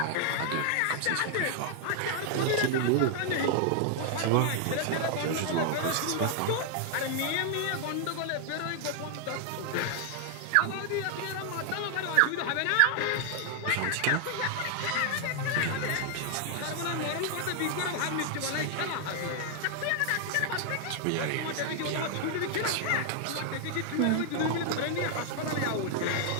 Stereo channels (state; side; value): different; both; correlation 0.00